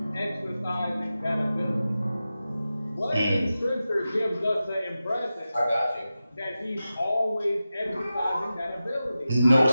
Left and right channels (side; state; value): both; inverted; correlation -0.93